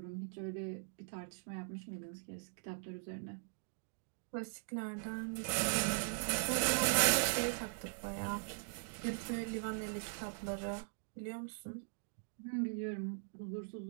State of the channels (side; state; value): left; silent; digital silence